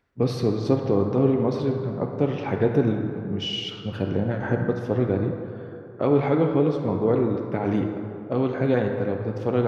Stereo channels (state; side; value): identical; both; correlation 1.00